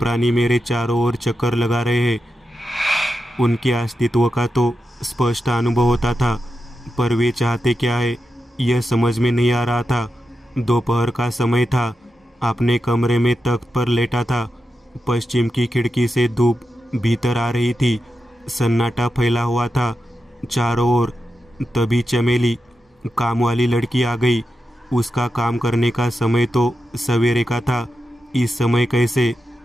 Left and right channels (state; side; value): normal; both; correlation 0.89